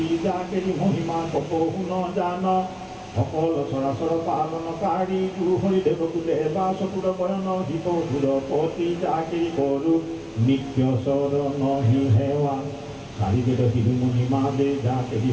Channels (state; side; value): identical; both; correlation 1.00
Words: যাকেৰি মহিমা কপহু ন জান সকল চৰাচৰ পালনকাৰী গুহৰি দেৱকুলে বা চকুৰ বয়ন হিতসুৰ পতি যাকেৰি কৰো নিত্য চৰণ হি সেৱা চাৰিবেদ শিৰোমণি মাদে যাকেৰি